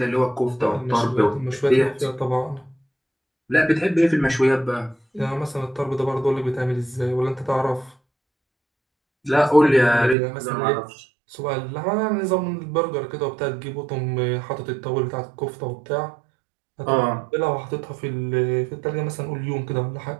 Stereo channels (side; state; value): left; drops out; at 10.2 s